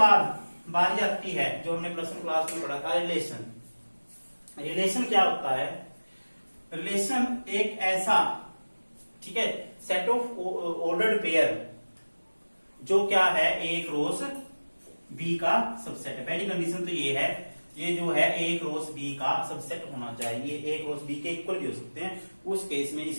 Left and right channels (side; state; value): both; inverted; correlation -1.00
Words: बारी आती है जो हमने प्लस वन क्लास में पढ़ा था, रिलेशन। रिलेशन क्या होता है? रिलेशन एक ऐसा, ठीक है, सेट ऑफ ऑर्डर्ड पेयर जो क्या है ए क्रॉस बी का सबसेट है। पहली कंडीशन तो ये है, ये जो है ए क्रॉस बी का सबसेट होना चाहिए, ए क्रॉस बी के इक्वल भी हो सकते हैं। उस केस में